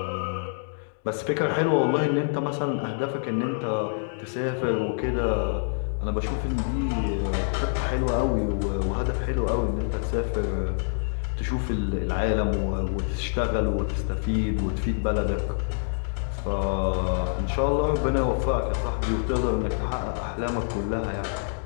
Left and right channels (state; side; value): silent; right; digital silence